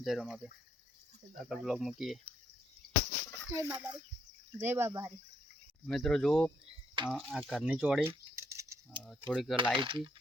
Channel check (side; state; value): both; normal; correlation 0.72